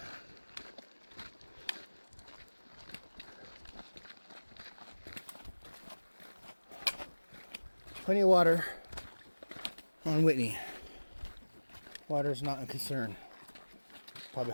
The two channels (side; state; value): both; inverted; correlation -1.00